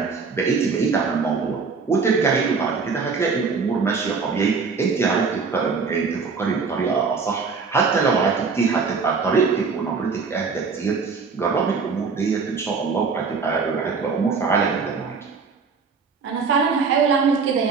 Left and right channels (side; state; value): left; quieter; 5.0 dB